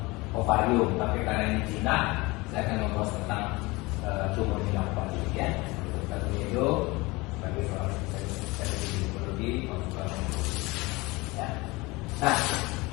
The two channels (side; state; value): right; quieter; 23.3 dB